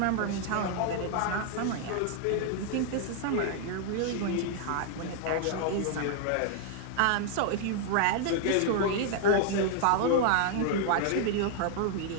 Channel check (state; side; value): different; both; correlation 0.00